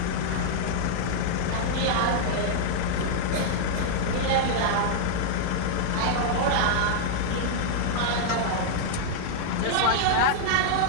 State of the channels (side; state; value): both; different; correlation -0.01